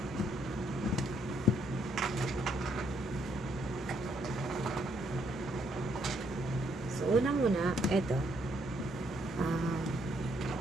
So, unang-una, ito.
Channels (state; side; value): normal; both; correlation 0.72